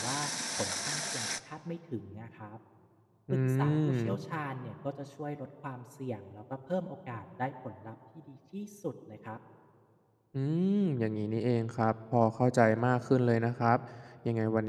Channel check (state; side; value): identical; both; correlation 1.00